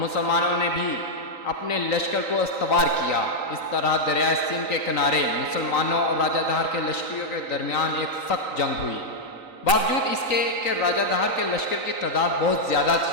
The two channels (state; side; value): late; right; 3.9 ms